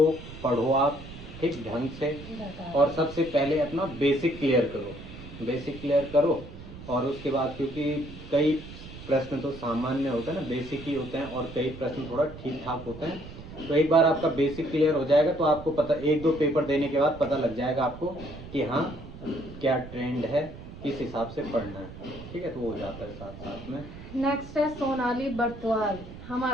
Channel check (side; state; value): right; noise; rumble, 14 dB below the sound